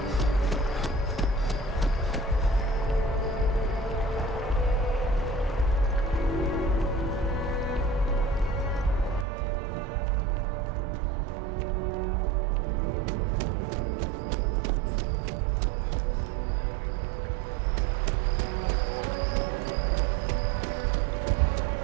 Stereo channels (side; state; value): left; drops out; at 9.2 s